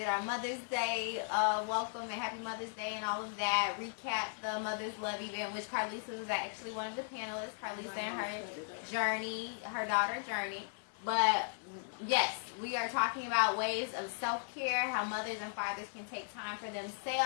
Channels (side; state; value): right; silent; digital silence